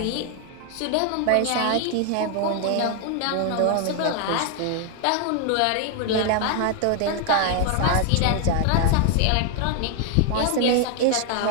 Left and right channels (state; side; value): different; both; correlation 0.00